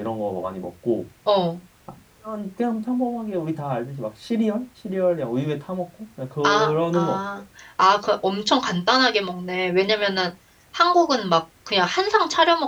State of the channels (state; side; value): identical; both; correlation 1.00